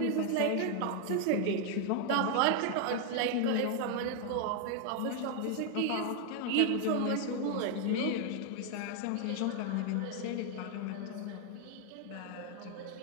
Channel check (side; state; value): both; different; correlation 0.00